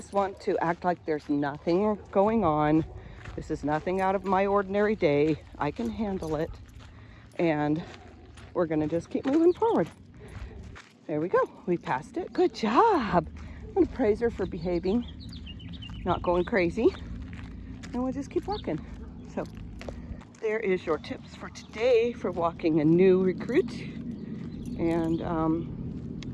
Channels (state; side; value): identical; both; correlation 1.00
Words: want to act like there's nothing going on. This is nothing out of my ordinary day. I can handle it. And we're gonna just keep moving forward. There we go, we passed it. Good job. I'm gonna praise her for behaving, not going crazy. And we'll just keep walking. So there is your tips for today for walking a new recruit. And